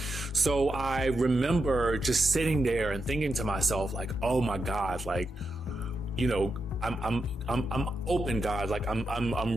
So I remember just sitting there and thinking to myself, like, oh my God, like, I'm open, God. Like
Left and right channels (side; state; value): both; normal; correlation 0.86